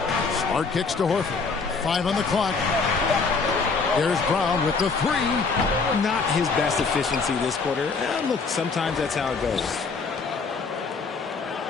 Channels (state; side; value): quieter; right; 4.7 dB